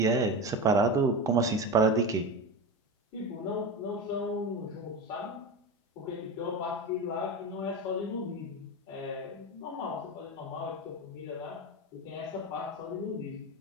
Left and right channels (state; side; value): normal; both; correlation 0.23